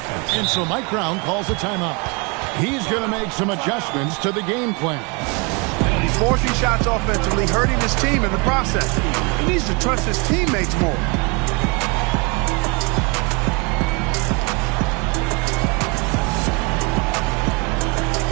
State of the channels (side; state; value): left; quieter; 30.9 dB